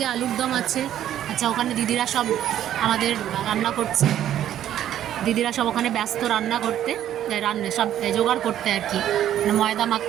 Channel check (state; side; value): quieter; left; 11.4 dB